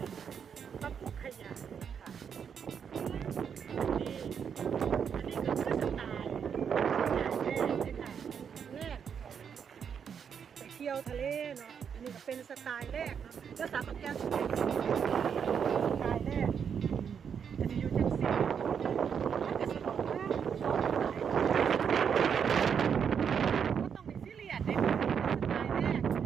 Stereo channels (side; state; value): left; quieter; 7.3 dB